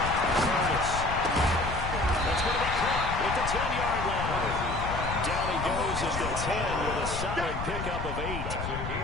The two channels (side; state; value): left; noise; rumble, 6 dB below the sound